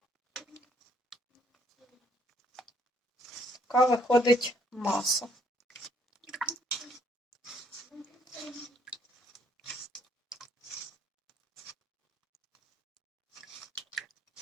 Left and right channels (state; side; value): normal; both; correlation 0.66